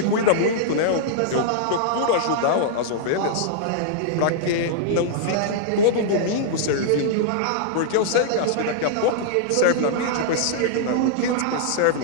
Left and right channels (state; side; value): different; both; correlation -0.01